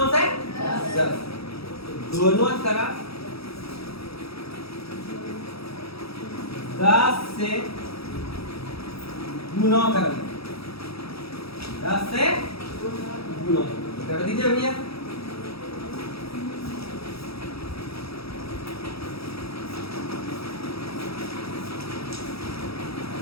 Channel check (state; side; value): late; right; 0.77 ms